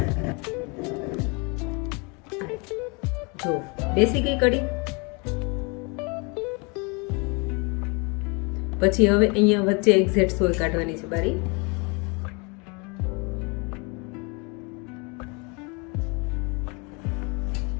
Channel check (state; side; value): quieter; right; 30.9 dB